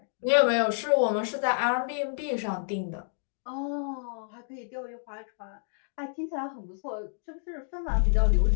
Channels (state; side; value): silent; right; digital silence